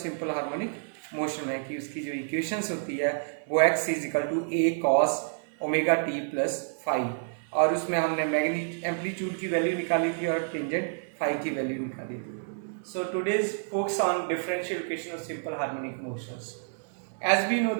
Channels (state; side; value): silent; left; digital silence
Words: सिंपल हार्मोनिक मोशन में कि उसकी जो इक्वेशंस होती है वो x is equal to A cos omega t plus five और उसमें हमने मैग्नीट्यूड एम्पलीट्यूड की वैल्यू निकाली थी और टेंजेंट फाइव की वैल्यू निकाली थी। So today's focus on differential equation of simple harmonic motions. As we know